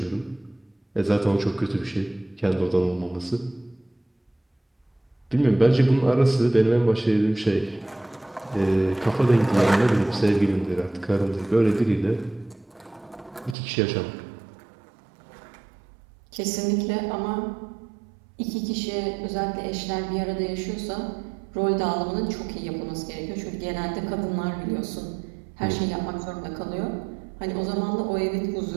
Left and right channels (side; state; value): left; drops out; at 13.6 s